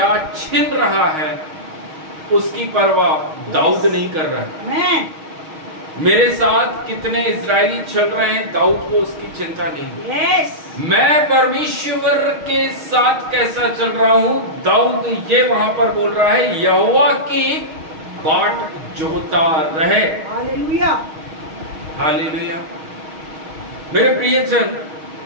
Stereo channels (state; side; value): late; left; 6.4 ms